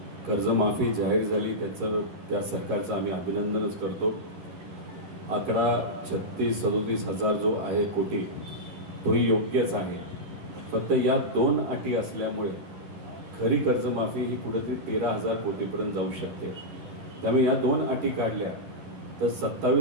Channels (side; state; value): left; late; 11 ms